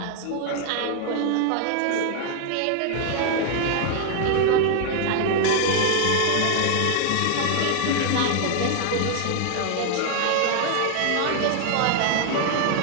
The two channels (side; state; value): both; different; correlation 0.00